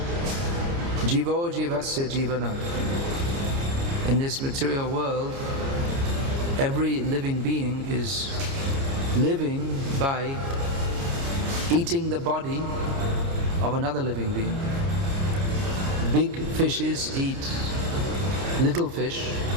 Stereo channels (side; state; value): left; late; 29 ms